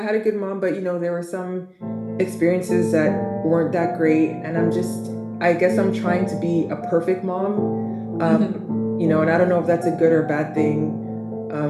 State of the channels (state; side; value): identical; both; correlation 1.00